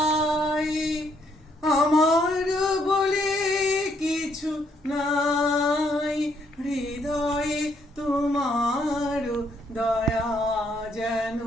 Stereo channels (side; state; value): both; normal; correlation 0.71